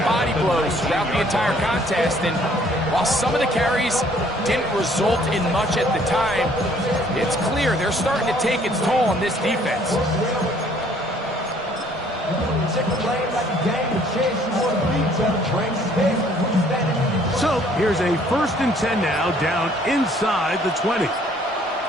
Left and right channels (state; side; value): normal; both; correlation 0.60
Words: body blows throughout the entire contest. And while some of the carries didn't result in much at the time, it's clear they're starting to take its toll on this defense. So here's a 1st and 10 now, down inside the 20.